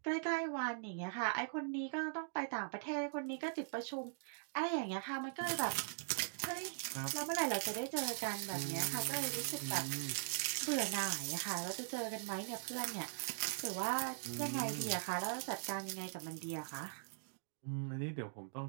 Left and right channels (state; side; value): silent; left; digital silence